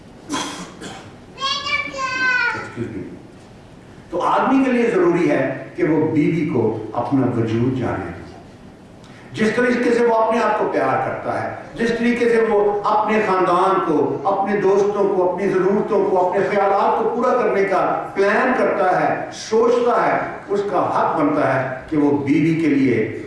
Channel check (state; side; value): identical; both; correlation 1.00